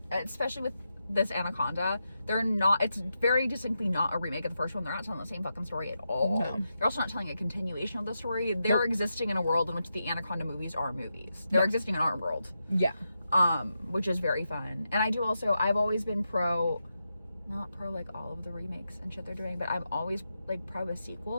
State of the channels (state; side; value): inverted; both; correlation -0.87